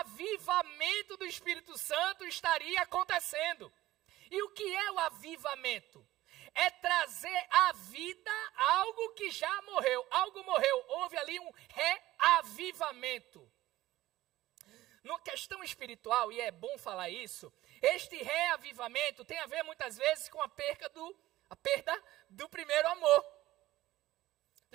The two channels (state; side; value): quieter; left; 16.2 dB